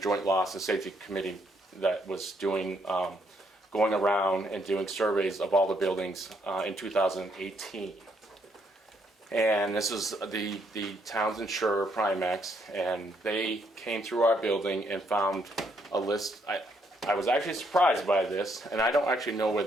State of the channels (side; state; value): both; normal; correlation 0.72